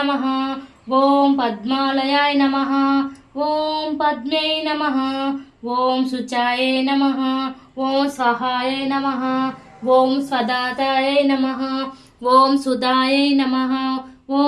ఓం పద్మాలయాయ నమః, ఓం పద్మే నమః, ఓం శుచాయ నమః, ఓం స్వహాయ నమః, ఓం స్వదాతాయ నమః, ఓం సుధాయ నమః,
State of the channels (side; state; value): both; identical; correlation 1.00